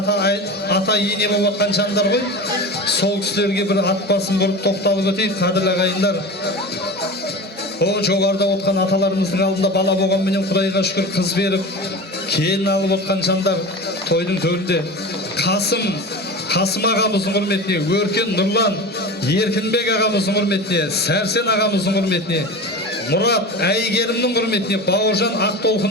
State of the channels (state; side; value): normal; both; correlation 0.30